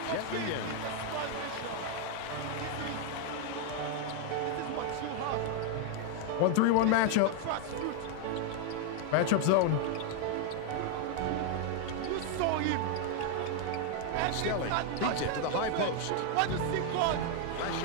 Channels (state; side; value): different; both; correlation 0.00